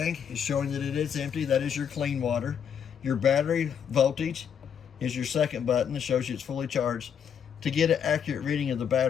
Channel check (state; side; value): quieter; right; 7.9 dB